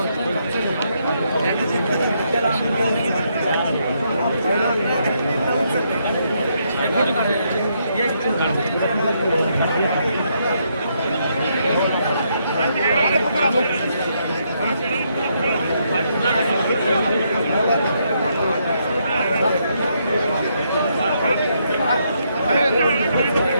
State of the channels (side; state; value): both; inverted; correlation -0.76